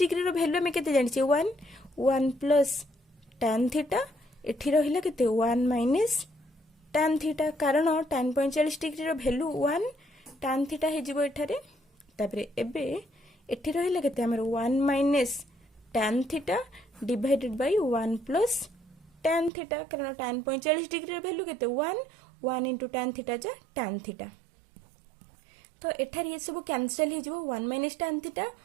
रो वैल्यू में केते जानि छै 1 प्लस tan थीटा एठी रहिला केते 1 माइनस tan थीटा कारण tan 45 डिग्री रो वैल्यू 1 tan थीटा हे जिवो एठारे तबरे एबे एठी रहिला केते हमर 1 minus tan theta divided by 1 plus tan theta कारण tan 45 डिग्री रो वैल्यू केते 1 इनटू tan थीटा जा tan थीटा तो एठार ये सब कैंसिल हे जिवो 1 minus tan theta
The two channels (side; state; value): left; drops out; at 19.5 s